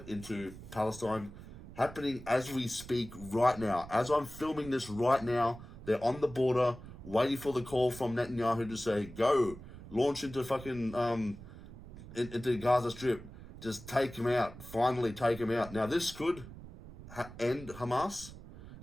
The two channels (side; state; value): right; noise; rumble, 15 dB below the sound